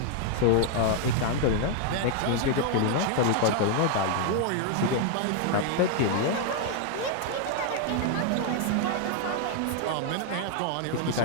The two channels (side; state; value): both; different; correlation 0.00